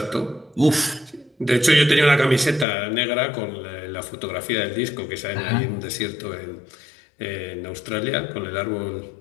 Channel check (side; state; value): right; drops out; at 2.7 s